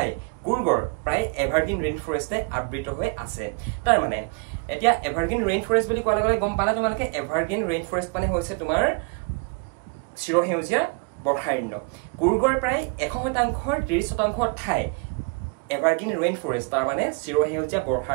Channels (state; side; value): quieter; left; 33.1 dB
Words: কুৰ্গৰ প্ৰায় evergreen rainforest আবৃত হৈ আছে তাৰ মানে এতিয়া evergreen rainforest বুলি কোৱাৰ লগে গম পালা তোমালোকে evergreen rainforest মানে হৈছে তোমাৰ চিৰসেউজীয়া বৰ্ষাৰণ্য কুৰ্গৰ প্ৰায় 100% 30% ঠাই এভাৰগ্ৰীন ৰেইন ফৰেষ্ট তাৰ মানে চিৰসেউজীয়া